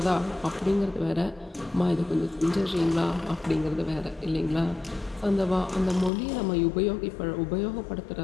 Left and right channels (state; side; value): drops out; right; at 6.1 s